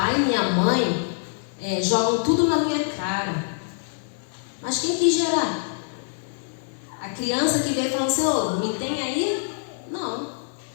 e minha mãe jogam tudo na minha cara. Mas quem quis gerar? A criança que veio falando assim, me tem aí? Não.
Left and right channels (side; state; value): right; silent; 58 dB below the other